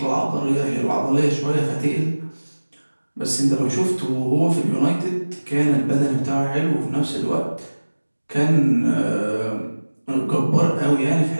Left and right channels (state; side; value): inverted; both; correlation -1.00